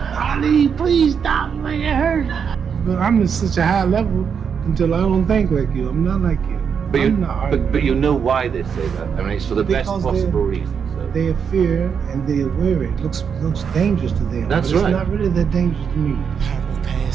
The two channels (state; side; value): quieter; left; 6.8 dB